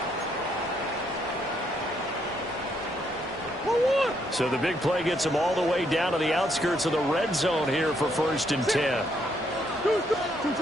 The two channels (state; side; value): normal; both; correlation 0.73